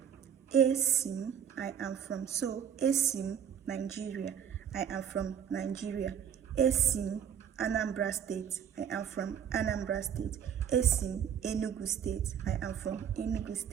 Esim, I am from. So Esim, Nigeria, I am from Nigeria. Esim, Anambra State, I am from Anambra State. Esim, Enugu State, I am from Enugu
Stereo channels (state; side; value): quieter; left; 8.5 dB